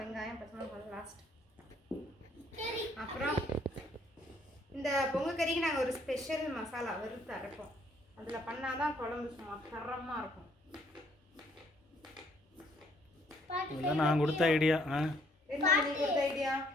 வெங்காயம் பச்சை மிளகாய் லாஸ்ட். சரி. அப்புறம் இந்த பொங்க கறிக்கு நாங்கள் ஒரு ஸ்பெஷல் மசாலா வறுத்து அரைப்போம். அதில் பண்ணாதான் குழம்பு சும்மா தரமாக இருக்கும். இதெல்லாம் நான் கொடுத்த ஐடியா. என்ன நீ கொடுத்த ஐடியா?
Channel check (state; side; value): normal; both; correlation 0.66